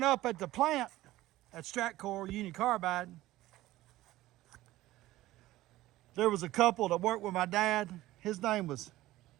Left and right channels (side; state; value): left; quieter; 16.4 dB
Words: up at the plant at Stratcor Union Carbide, there was a couple that worked with my dad. His name was